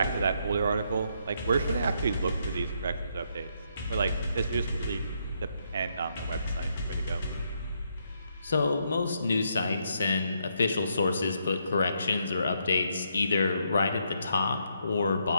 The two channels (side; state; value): both; inverted; correlation -0.76